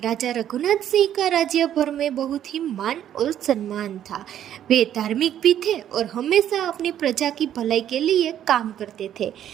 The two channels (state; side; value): quieter; left; 10.7 dB